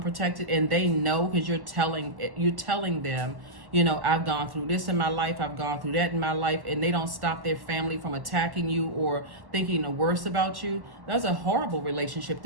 and they know because you're telling them, you know, I've gone through this in my life, I've gone through that in my life, and they don't stop their family from attacking you or thinking the worst about you? That's a horrible relationship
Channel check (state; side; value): late; left; 1.1 ms